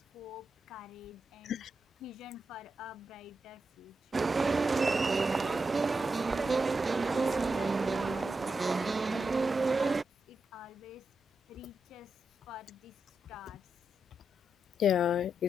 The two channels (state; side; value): normal; both; correlation 0.86